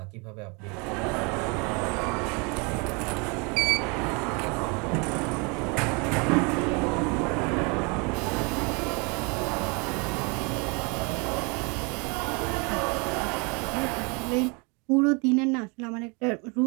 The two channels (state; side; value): quieter; left; 31.1 dB